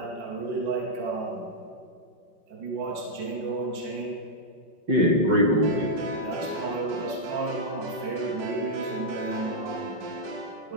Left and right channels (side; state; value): left; late; 5.8 ms